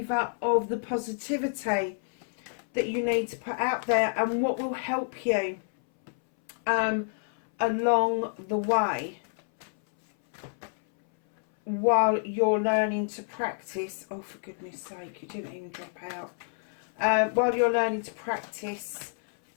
of the positivity that you need to put out there and what will help you along the way while you're learning to practice. Oh, for goodness sake, you didn't even drop out. While you're learning to practice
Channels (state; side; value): silent; right; 59 dB below the other